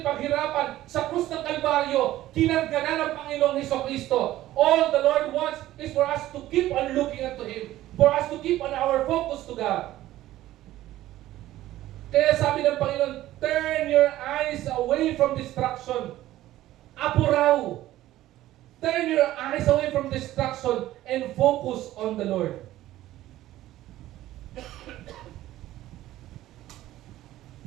paghirapan sa krus ng Kalbaryo, kinarga na ng Panginoong Jesucristo. All the Lord wants is for us to keep on looking unto Him. For us to keep on our focus to God. Kaya sabi ng Panginoon, turn your eyes away from destruction. Apuraw. Turn your eyes away from destruction and focus on the Lord.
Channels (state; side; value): quieter; left; 14.8 dB